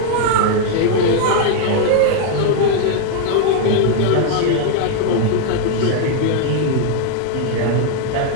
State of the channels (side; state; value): both; different; correlation 0.00